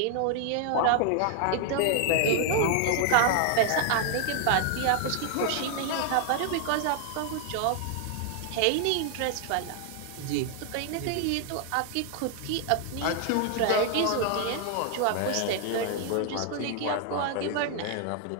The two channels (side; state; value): both; different; correlation 0.00